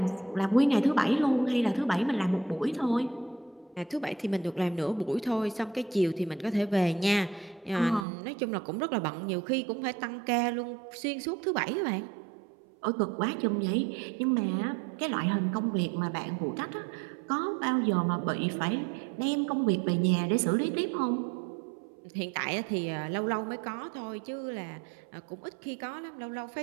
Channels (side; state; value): left; drops out; at 8.1 s